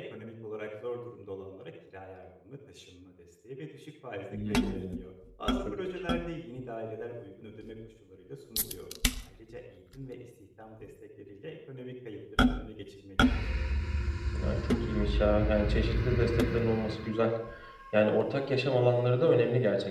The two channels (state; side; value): identical; both; correlation 1.00